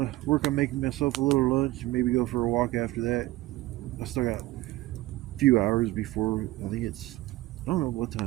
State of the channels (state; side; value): quieter; left; 17.4 dB